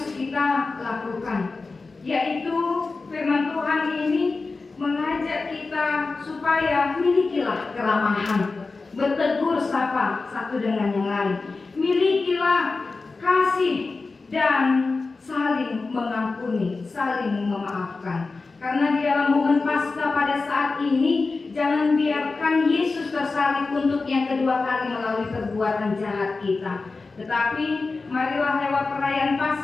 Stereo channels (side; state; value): right; quieter; 3.9 dB